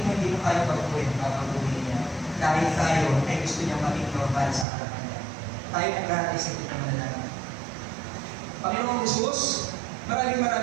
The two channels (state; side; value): drops out; left; at 4.7 s